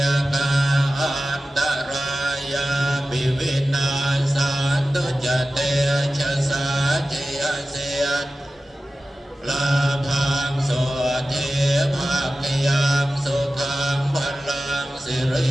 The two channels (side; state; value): both; normal; correlation 0.95